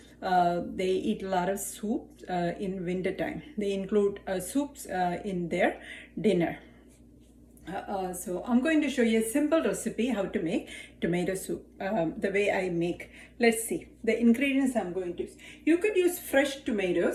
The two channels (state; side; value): identical; both; correlation 1.00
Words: they eat a lot of soup in winter time. They include soups in their dinner. So I'm going to show you a simple recipe how to make tomato soup, the way I make. Let's see the ingredients I'm going to use. You could use fresh